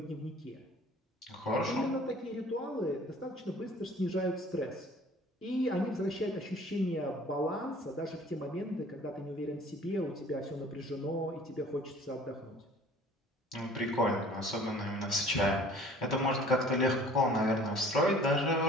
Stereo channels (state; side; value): normal; both; correlation 0.50